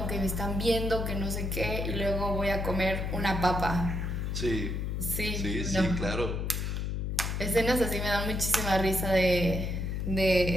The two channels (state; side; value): noise; left; hum, 1 dB below the sound